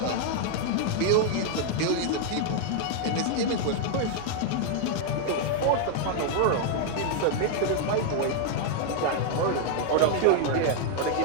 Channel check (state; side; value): different; both; correlation 0.00